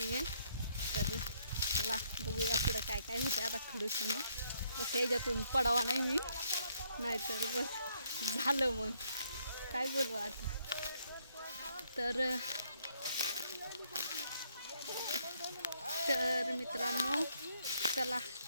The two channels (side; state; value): both; inverted; correlation -0.71